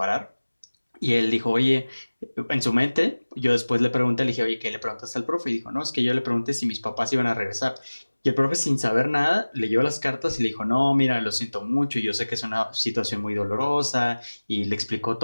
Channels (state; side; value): inverted; both; correlation -1.00